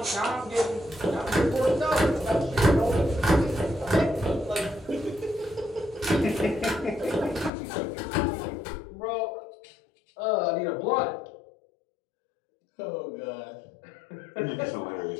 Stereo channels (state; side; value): drops out; right; at 7.5 s